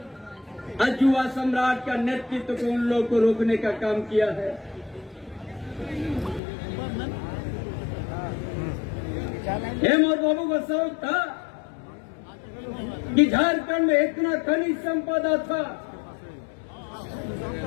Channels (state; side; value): drops out; right; at 6.4 s